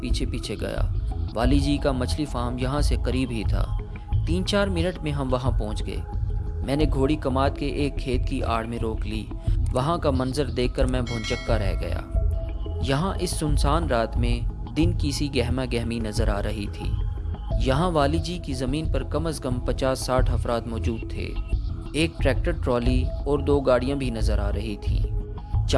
پیچھے گیا۔ والی جی کا مچھلی فارم یہاں سے قریب ہی تھا۔ 3-4 منٹ میں ہم وہاں پہنچ گئے۔ میں نے گھوڑی کماد کے ایک کھیت کی آڑ میں روک لی۔ وہاں کا منظر دیکھ کر میں بھونچکا رہ گیا۔ یہاں اس سنسان رات میں دن کی سی گہما گہمی نظر آ رہی تھی۔ یہاں والی جی کی زمین پر کم از کم 50-60 افراد موجود تھے۔ ایک ٹریکٹر ٹرالی اور 2 گاڑیاں بھی نظر آ رہی تھیں۔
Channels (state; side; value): identical; both; correlation 1.00